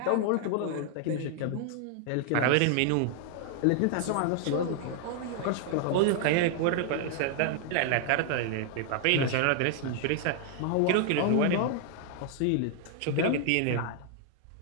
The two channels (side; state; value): both; different; correlation 0.00